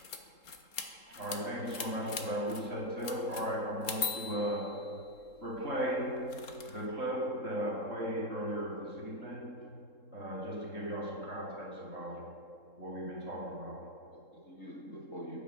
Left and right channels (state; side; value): late; right; 3.7 ms